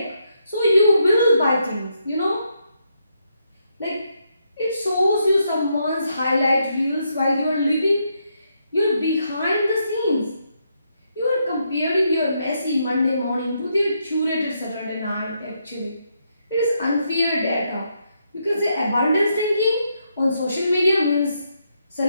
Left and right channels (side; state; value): both; inverted; correlation -0.78